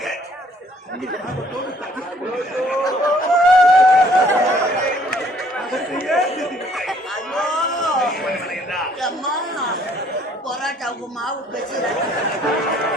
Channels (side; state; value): both; normal; correlation 0.61